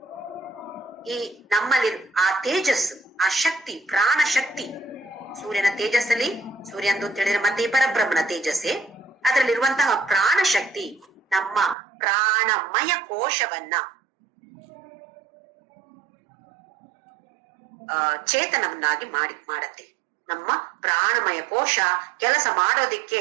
ಈ ನಮ್ಮಲ್ಲಿ ಆ ತೇಜಸ್ಸು, ಆ ಶಕ್ತಿ, ಪ್ರಾಣ ಶಕ್ತಿ, ಸೂರ್ಯನ ತೇಜಸ್ಸಲ್ಲಿ, ಸೂರ್ಯಂದು ಅಂತ ಹೇಳಿದ್ರೆ ಮತ್ತೆ ಪರಬ್ರಹ್ಮನ ತೇಜಸ್ಸೇ, ಅದರಲ್ಲಿರುವಂತಹ ಪ್ರಾಣ ಶಕ್ತಿ ನಮ್ಮ ಪ್ರಾಣಮಯ ಕೋಶವನ್ನ ಚೇತನವನ್ನಾಗಿ ಮಾಡತ್ತೆ. ನಮ್ಮ ಪ್ರಾಣಮಯ ಕೋಶ ಕೆಲಸ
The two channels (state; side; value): drops out; left; at 11.8 s